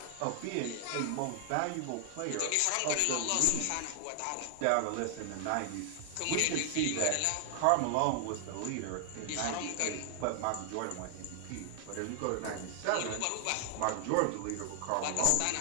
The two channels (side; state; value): both; different; correlation 0.00